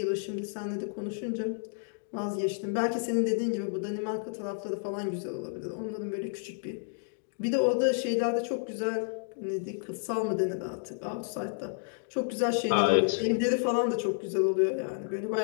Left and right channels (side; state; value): right; silent; digital silence